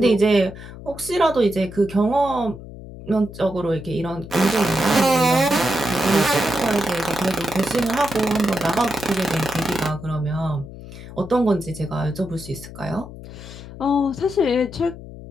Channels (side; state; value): left; noise; hum, 14 dB below the sound